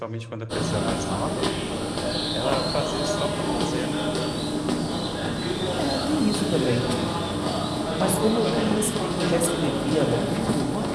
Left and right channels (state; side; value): identical; both; correlation 1.00